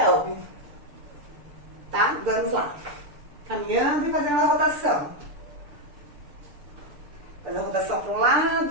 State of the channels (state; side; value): late; left; 6.7 ms